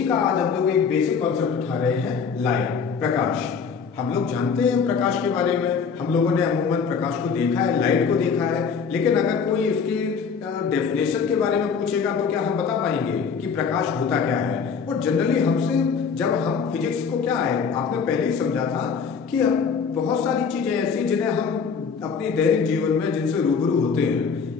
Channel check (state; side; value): quieter; right; 5.9 dB